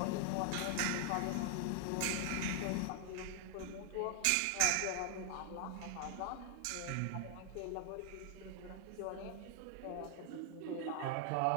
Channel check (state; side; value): different; both; correlation 0.00